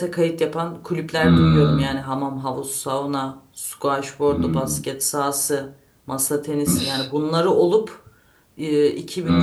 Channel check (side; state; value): both; identical; correlation 1.00